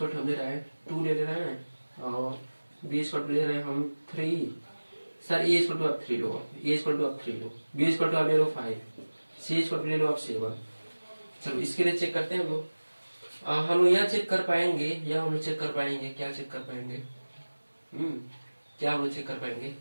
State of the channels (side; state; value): both; inverted; correlation -1.00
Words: टू हम ले रहे हैं 2 ले रहे हैं, और बी इक्वल टू ले रहे हैं हम 3। सर ए इक्वल टू आप 3 लो, ए इक्वल टू आप 3 लो, बी इक्वल टू आप ले लो 5, सी इक्वल टू ले लो आप 7। चलो इसके लिए चेक करते हैं हम लोग। हम लोग यहाँ चेक कर पाएंगे, या हम लोग चेक कर पाएंगे, क्या चेक कर पाएंगे? क्या हम लोग चेक कर पाएंगे?